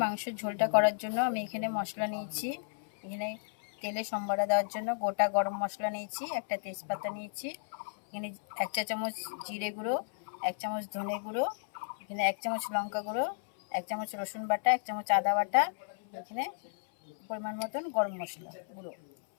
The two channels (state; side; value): silent; right; 56 dB below the other